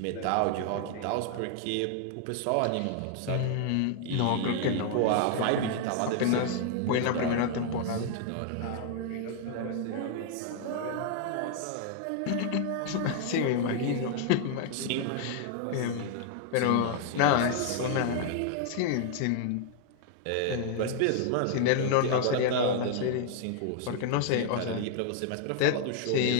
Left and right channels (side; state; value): both; different; correlation 0.00